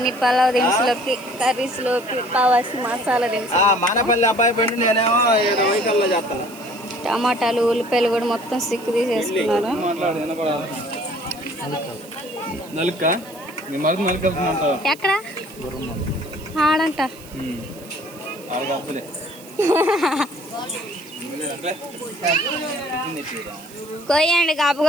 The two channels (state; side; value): noise; right; hiss, 20 dB below the sound